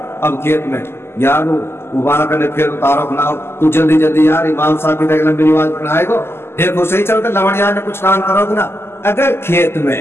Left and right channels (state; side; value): late; right; 0.12 ms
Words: اب کھیت میں یارو مبارک کرنے پھر اتارو اپنا، تو جلدی یار امام صاحب کی طرح لمبی نماز پڑھائے گو، دیکھو صحیح چلتا لوڑیاں نے کچھ کام کرو گے نا۔ اگر کھیت میں،